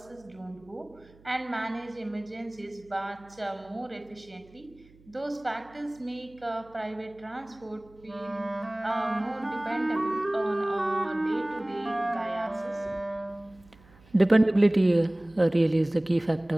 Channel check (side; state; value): right; noise; hum, 27 dB below the sound